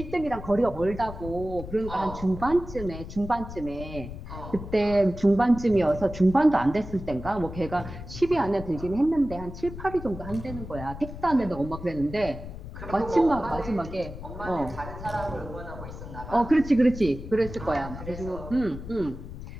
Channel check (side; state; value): left; noise; rumble, 11 dB below the sound